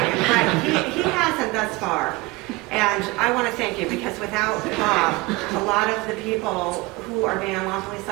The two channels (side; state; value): left; quieter; 23.1 dB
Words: but he hasn't thus far. And I want to thank you, because without Bob, a lot of the people who are being unlawfully